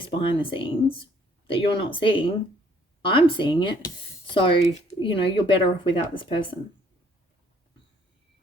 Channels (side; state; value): both; normal; correlation 0.63